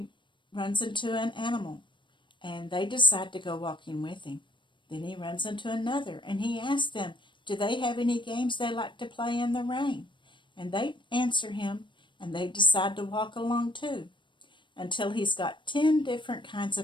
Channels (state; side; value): late; right; 0.23 ms